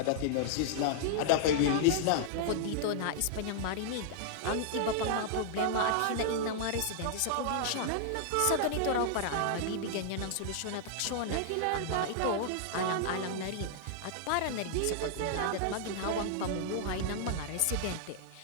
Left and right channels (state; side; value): different; both; correlation -0.01